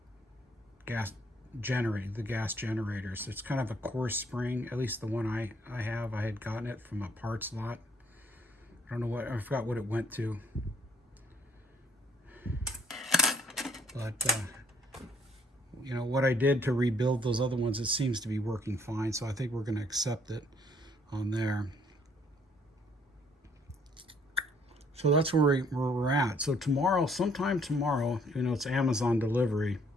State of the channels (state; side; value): normal; both; correlation 0.63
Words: gas generating, the gas generators. It's kind of a coarse spring, at least the one I have. I had gotten it from a parts lot. I don't know what, I forgot what it went to. But, what I did to rebuild those other ones, it seems to be working fine. So I think we're going to accept it on there. So that's where we're at. So tomorrow, sometime tomorrow, it's Amazon delivery,